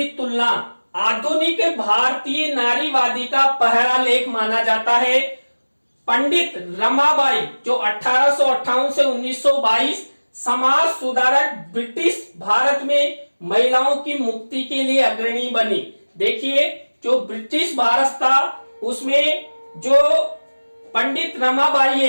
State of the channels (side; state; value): both; inverted; correlation -1.00